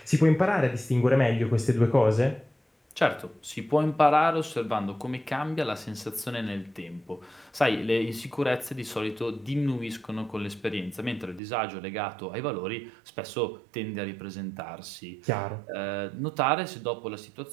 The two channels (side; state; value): left; drops out; at 11.4 s